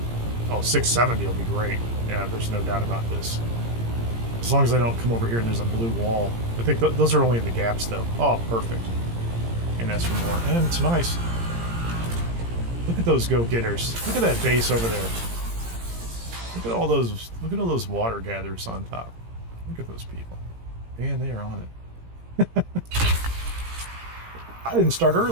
Oh, 670 will be great. Yeah, there's no doubt about this. As long as I don't come over here and there's a blue wall. I think those are only in the gaps, though. Oh, perfect. And ask for more. And it's nice. Look at those go-getters. Look at that base over there. Look at all those water gatherers on top. Look at those people. Man, they are on it. I didn't start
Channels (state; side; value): late; left; 17 ms